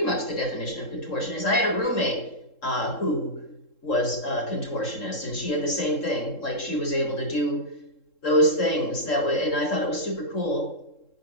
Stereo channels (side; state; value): right; late; 3.7 ms